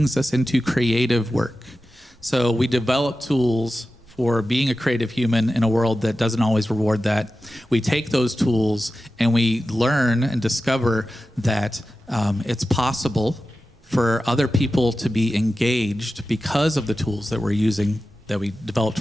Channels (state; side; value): normal; both; correlation 0.93